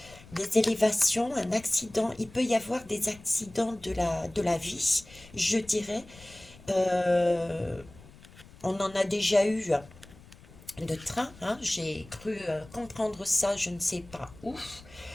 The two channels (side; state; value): left; noise; rumble, 22 dB below the sound